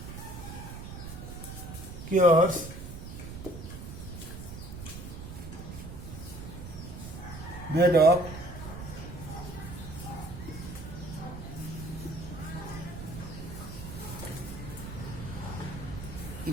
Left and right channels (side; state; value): right; noise; rumble, 9 dB below the sound